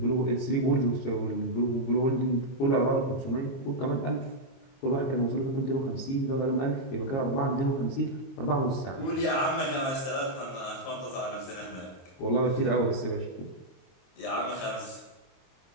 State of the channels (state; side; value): late; right; 23 ms